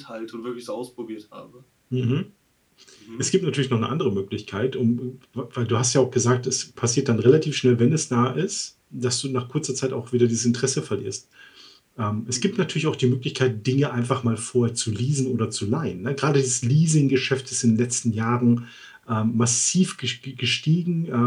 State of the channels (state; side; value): identical; both; correlation 1.00